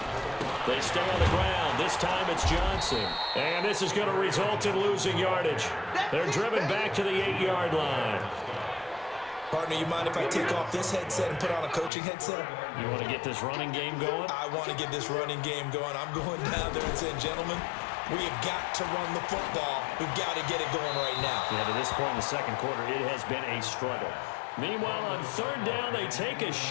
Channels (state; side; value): drops out; right; at 11.9 s